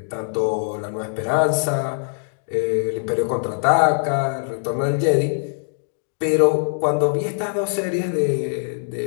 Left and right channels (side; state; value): right; silent; digital silence